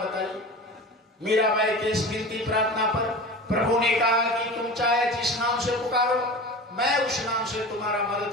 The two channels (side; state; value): both; normal; correlation 0.33